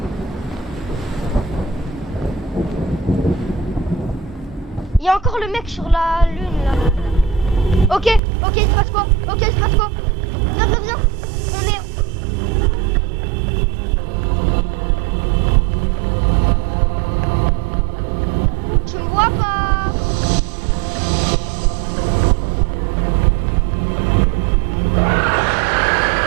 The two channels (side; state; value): left; drops out; at 8.2 s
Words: Il y a encore le mec sur la lune là. Ok, il se passe quoi? Ok, il se passe quoi? Viens. On est... Tu me vois pas?